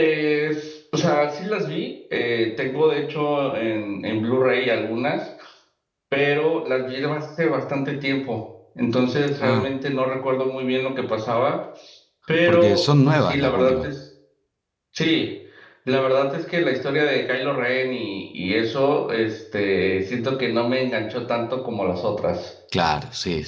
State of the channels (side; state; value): both; identical; correlation 1.00